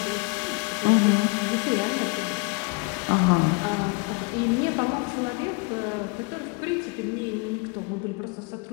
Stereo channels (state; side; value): quieter; right; 27.9 dB